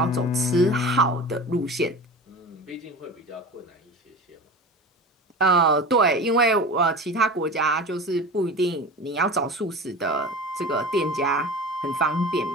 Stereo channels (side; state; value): both; normal; correlation 0.33